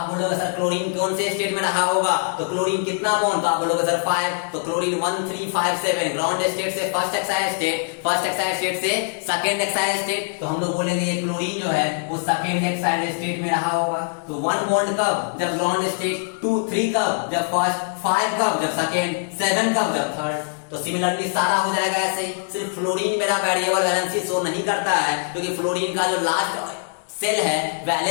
बोलोगे सर क्लोरीन कौन से स्टेट में रहा होगा, तो क्लोरीन कितना बॉन्ड, तो आप बोलोगे सर 5, तो क्लोरीन 1 3 5 7, ग्राउंड स्टेट से first Exide state, first Exide state से सेकंड एक्साइड स्टेट, तो हम लोग बोलेंगे ये क्लोरीन जो है वो सेकंड एक्साइड स्टेट में रहा होगा। तो 1 बॉन्ड कब, जब ग्राउंड स्टेट, 2 3 कब, जब फर्स्ट, 5 कब, जब सेकंड, 7 कब, जब थर्ड। तो सिमिलरली सारा हो जाएगा ऐसे। सिर्फ फ्लोरीन मेरा वेरिएबल वैलेंसी शो नहीं करता है, क्योंकि फ्लोरीन का जो लास्ट सेल है,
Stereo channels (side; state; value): right; silent; digital silence